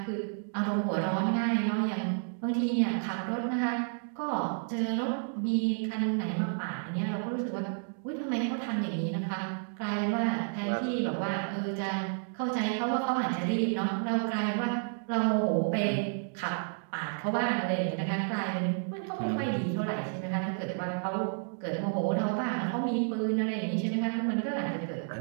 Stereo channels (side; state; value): left; silent; 57 dB below the other